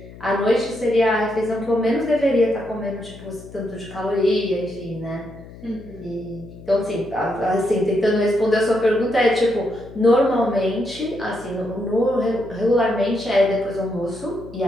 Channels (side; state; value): left; noise; hum, 17 dB below the sound